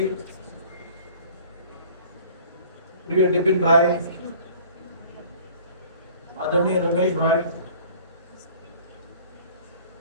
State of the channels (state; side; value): inverted; both; correlation -0.50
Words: प्रिय डिपिन भाई, आदरणीय रमेश भाई,